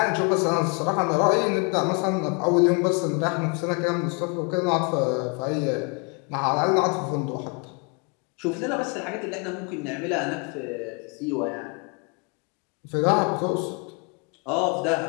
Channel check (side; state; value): right; quieter; 33.4 dB